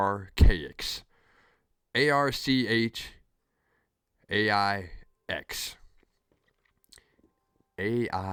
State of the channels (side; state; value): both; identical; correlation 1.00